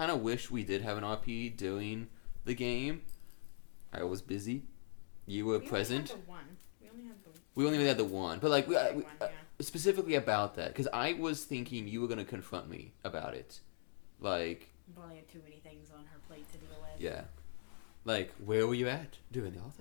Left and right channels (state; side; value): silent; right; digital silence